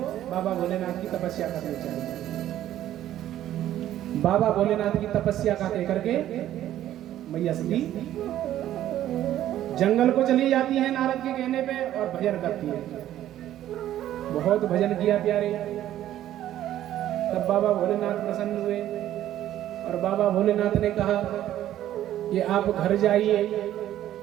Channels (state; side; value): quieter; left; 12.5 dB